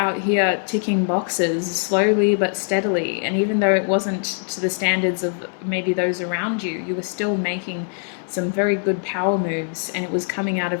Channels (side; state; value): right; silent; digital silence